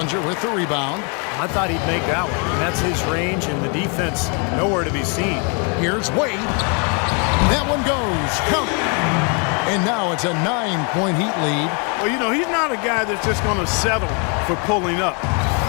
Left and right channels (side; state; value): right; quieter; 36.3 dB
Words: with the rebound. I thought he'd make that one. And that's his range, and the defense nowhere to be seen. Here's Wade. That one goes. Count. And now it's a 9-point Heat lead. Well, you know, he's not a guy that's just going to settle for pulling up.